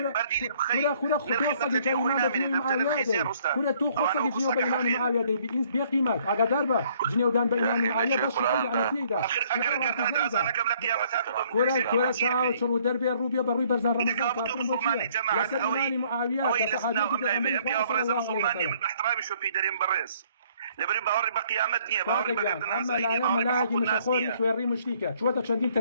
بردي بخير كلا خطوة صدق إيمان بإيمان معاوية كلا تو خطوة جنيو بإيمان معاوية دي بإنس بقيمات أقا داربا جنيو دان بإيمان معاوية باش على تيدا كلا ساعة شرو دربي الروبيا بروي برزان رمضان يسلماني معاوية مسلماني من احترامي شو في دريم بريس لبري باوري بقيامة دنيا باوري بقيامة الناس أما لاجي مش أخوي شويري مشتيكا شو تشندين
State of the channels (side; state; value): both; inverted; correlation -0.63